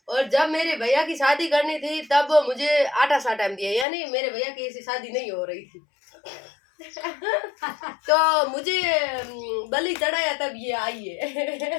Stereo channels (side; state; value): right; drops out; at 3.9 s